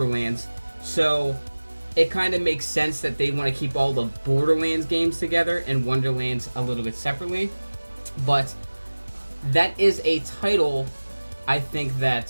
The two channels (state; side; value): inverted; both; correlation -1.00